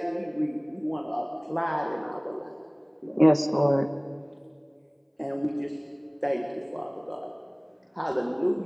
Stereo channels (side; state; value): both; identical; correlation 1.00